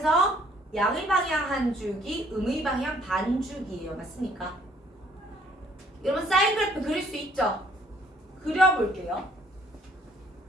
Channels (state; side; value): normal; both; correlation 0.63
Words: 양의 방향 한 주기, 음의 방향 반 주기예요. 맞습니까? 여러분 사인 그래프 그릴 수 있죠? 그려볼게요.